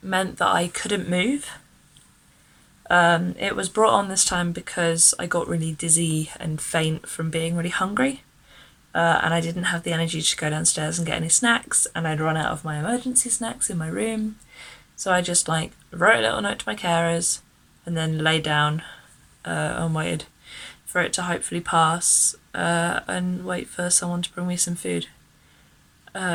meant that I couldn't move. It was brought on this time because I got really dizzy and faint from being really hungry, and I didn't have the energy to go downstairs and get any snacks, and I'd run out of my emergency snacks in my room. So I just wrote a little note to my carers and then lay down and waited for it to hopefully pass and wait for someone to bring me some food.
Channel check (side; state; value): both; identical; correlation 1.00